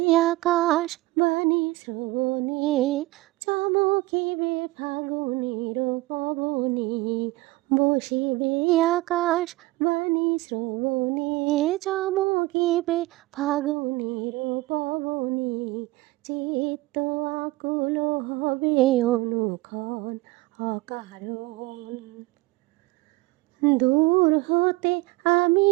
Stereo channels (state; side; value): quieter; left; 20.4 dB